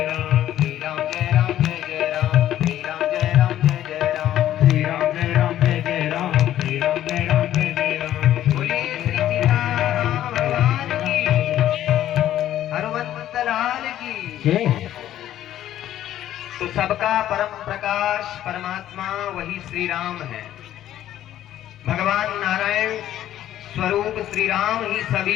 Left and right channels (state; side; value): quieter; right; 12.3 dB